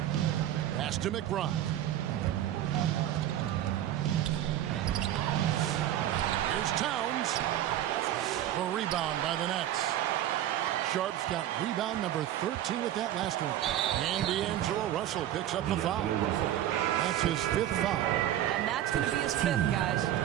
Pass to McBride. Here's Towns. The rebound by the Nets. Sharp's got rebound number 13 with that last one. And D'Angelo Russell picks up the foul. That's his 5th foul. And that's going to be his 5th, guys.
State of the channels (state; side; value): quieter; left; 12.2 dB